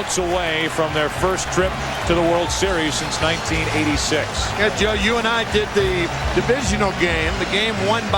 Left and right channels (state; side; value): identical; both; correlation 1.00